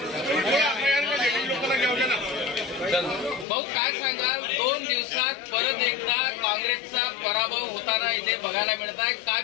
भाऊ काय सांगाल, 2 दिवसात परत एकदा काँग्रेसचा पराभव होताना इथे बघायला मिळत आहे, काय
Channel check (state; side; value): drops out; right; at 3.5 s